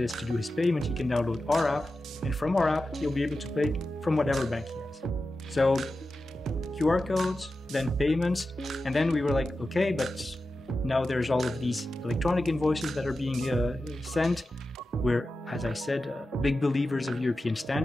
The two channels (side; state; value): both; normal; correlation 0.92